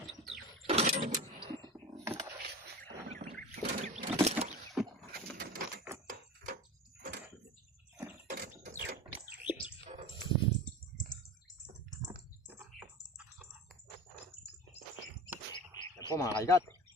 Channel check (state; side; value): normal; both; correlation 0.33